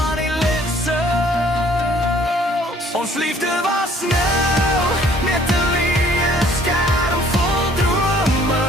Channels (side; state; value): both; normal; correlation 0.58